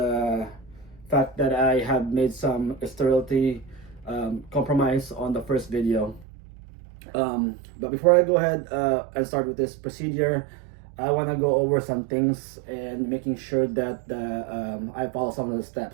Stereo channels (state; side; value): drops out; left; at 6.2 s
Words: fact that I have made some sterility compromise on the first video. But before I go ahead and start with this procedure, I want to go over some things and making sure that I follow some of the